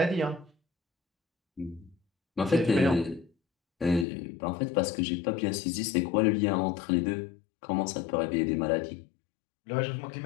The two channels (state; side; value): drops out; right; at 4.0 s